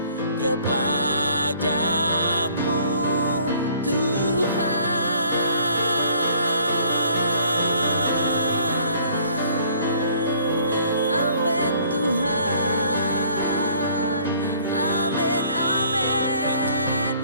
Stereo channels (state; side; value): inverted; both; correlation -0.58